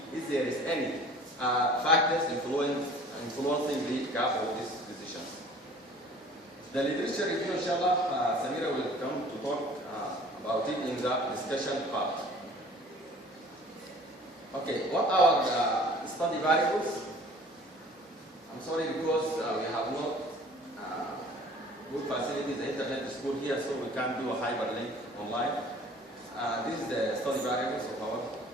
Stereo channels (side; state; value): both; normal; correlation 0.49